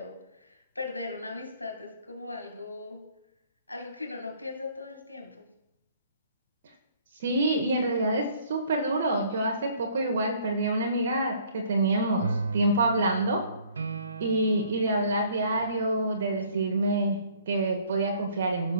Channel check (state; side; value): inverted; both; correlation -0.58